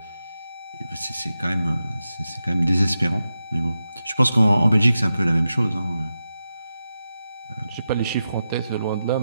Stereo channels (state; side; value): inverted; both; correlation -0.90